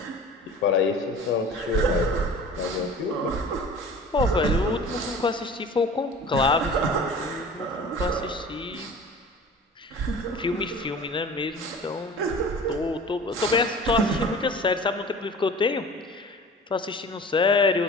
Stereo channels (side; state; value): both; normal; correlation 0.41